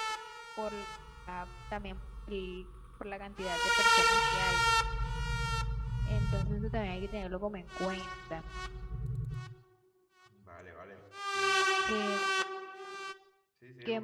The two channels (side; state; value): both; identical; correlation 1.00